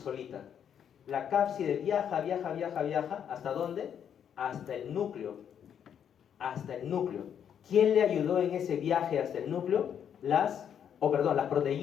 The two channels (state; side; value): quieter; right; 8.6 dB